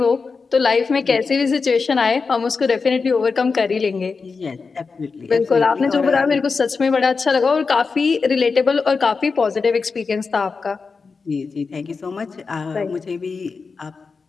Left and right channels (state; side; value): quieter; right; 4.7 dB